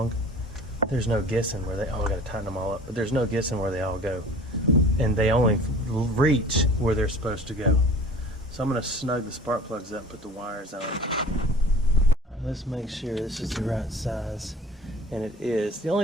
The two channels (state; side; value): normal; both; correlation 0.45